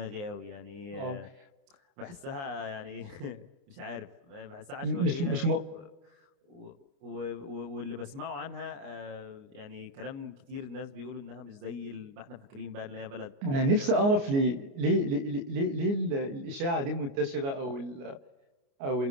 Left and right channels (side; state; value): left; late; 29 ms